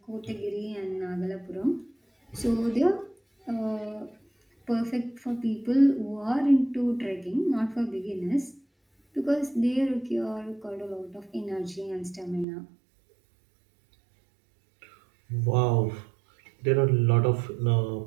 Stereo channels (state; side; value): drops out; left; at 12.5 s